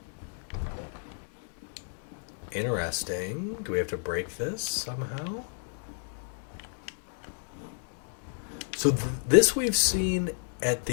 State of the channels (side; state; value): right; silent; digital silence